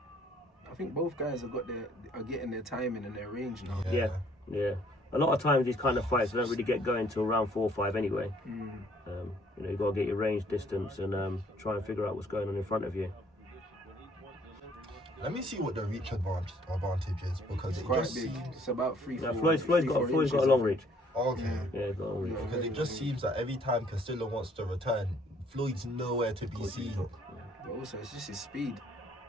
I think both guys are getting their timing and their range now. Yeah. A lot of times these kind of fights don't really get going till round 4 or 5 anyway. You've got to get your range distance and try and figure out what's going on in front of you. Let me see what the reach advantage is, because It's it quite just big. seems... It's about 3, Now 4 Floyd's got inches. a long reach. Okay. Yeah, he's got a long reach. Because it just seems that every time Castillo wants to return, Floyd's nowhere to be seen. But also, it's just his speed.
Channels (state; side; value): normal; both; correlation 0.62